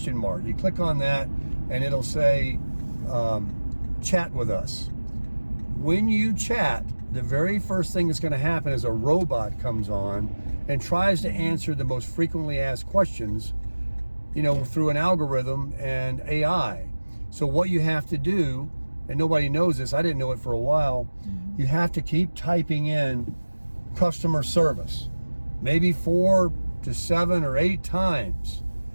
mark. You click on that and it'll say, chat with us. When you chat, the very first thing that's going to happen is a robot comes on and tries to answer the most frequently asked questions, through an algorithm and AI. So what you have to do, and nobody knows this, I didn't know it for a while, you have to keep typing in customer service, maybe 4 to 7 or 8 times,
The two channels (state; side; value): inverted; both; correlation -1.00